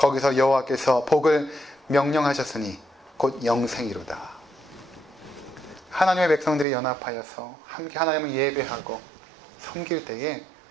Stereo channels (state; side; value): drops out; left; at 6.7 s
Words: 여호와께서 복을 명령하셨으니 곧 영생이로다. 하나님의 백성들이 연합하여서 함께 하나님을 예배하고 섬길 때에